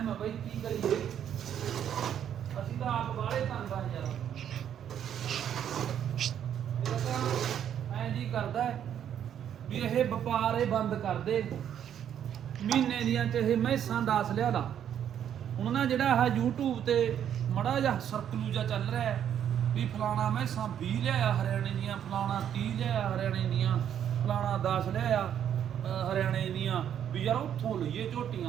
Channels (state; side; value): quieter; left; 9.5 dB